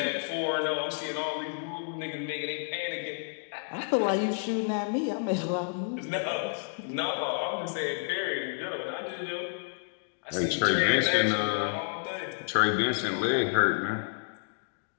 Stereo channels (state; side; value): silent; right; digital silence